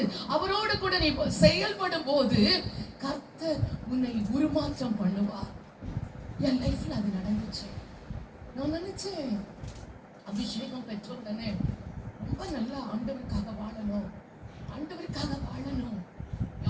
அவரோடு கூட நீ செயல்படும் போது கர்த்தர் உன்னை உருமாற்றம் பண்ணுவார். என் லைஃப்ல அது நடந்துச்சு. நான் நினைச்சேன், அபிஷேகம் பெற்ற உடனே ரொம்ப நல்லா ஆண்டவருக்காக வாழணும்,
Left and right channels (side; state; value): both; identical; correlation 1.00